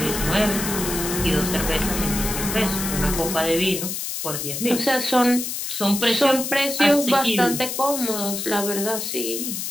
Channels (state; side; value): noise; left; hiss, 4 dB below the sound